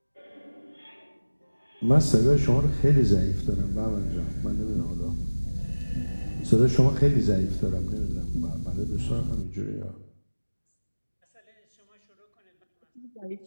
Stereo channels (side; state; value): both; inverted; correlation -1.00